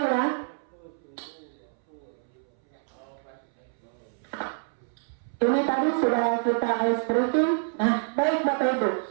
ya. Ini tadi sudah kita ice breaking. Nah, baik Bapak Ibu.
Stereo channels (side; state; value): left; silent; 60 dB below the other